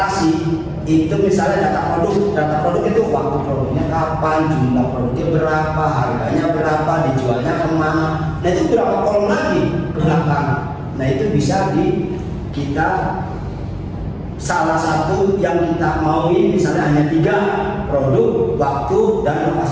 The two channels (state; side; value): identical; both; correlation 1.00